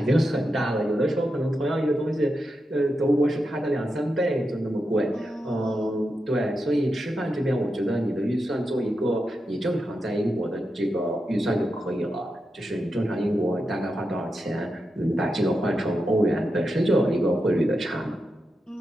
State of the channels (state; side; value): normal; both; correlation 0.88